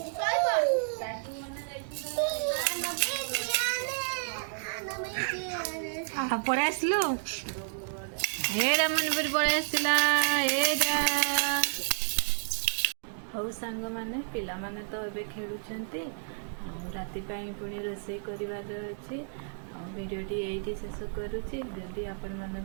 ପଳେଇ ଆସିଲୁ ଏଇଟା ମନବୀର ପଳେଇ ଆସିଲା ଏଇଟା। ହଉ ସାଙ୍ଗମାନେ, ପିଲାମାନେ ତ ଏବେ ଖେଳୁଛନ୍ତି, ଆଉ ରାତି ପାଇଁ ପୁଣି ରୋଷେଇ କରିବାର ଅଛି। ଆଉ ଭିଡ଼ିଓଟି ଏଇଠି ଶେଷ କରୁଛି। ଯଦି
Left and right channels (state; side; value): silent; left; digital silence